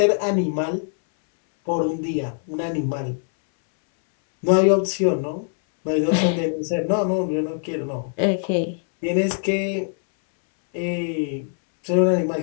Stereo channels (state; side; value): silent; right; 64 dB below the other